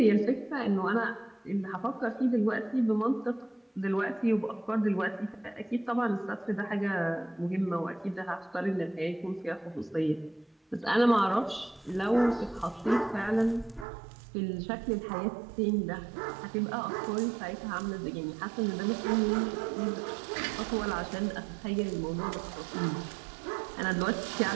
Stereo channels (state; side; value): drops out; left; at 13.9 s